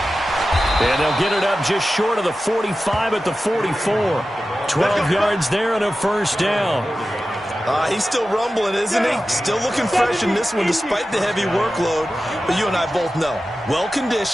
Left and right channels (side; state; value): both; normal; correlation 0.94